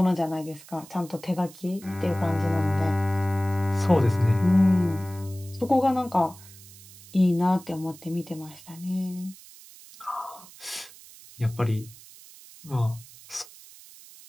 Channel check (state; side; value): noise; right; hiss, 20 dB below the sound